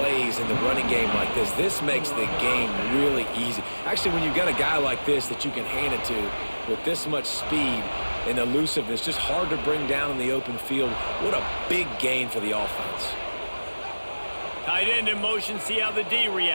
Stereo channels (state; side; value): inverted; both; correlation -1.00